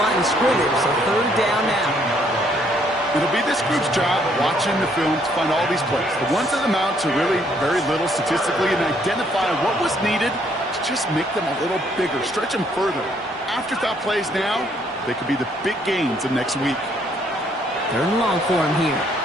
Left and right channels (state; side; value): normal; both; correlation 0.67